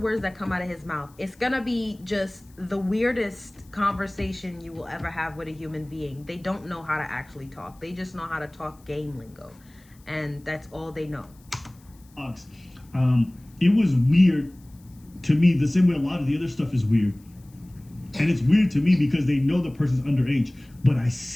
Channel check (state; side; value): noise; left; hiss, 30 dB below the sound